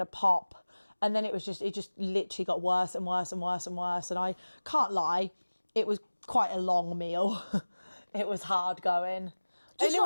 pop. And then it just literally got worse and worse and worse and worse. And I can't lie, it was quite a long meal. It was hard going. And it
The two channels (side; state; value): both; inverted; correlation -1.00